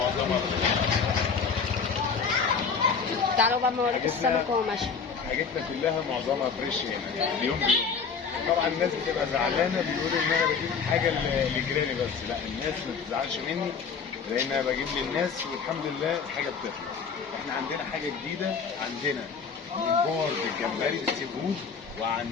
تعالوا بقى اوريكم السمك وهو ماشي. حاجتنا كلها معظمها فريش هنا اليوم بيوم. طبعا الناس بتبقى زعلانه، بتقول ان انا بجيب حاجه لجيراني، بس لا، الناس ما تزعلش مني لان انا بجيب للناس والحمد لله الحاجه بتطلع. احنا عندنا حاجه جديده، عندنا ممبار بالجمبري بالسي فود،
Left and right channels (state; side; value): quieter; right; 5.8 dB